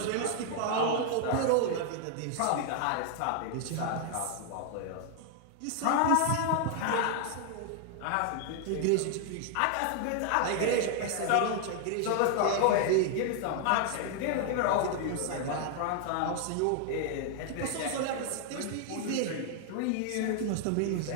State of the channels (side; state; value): both; different; correlation 0.00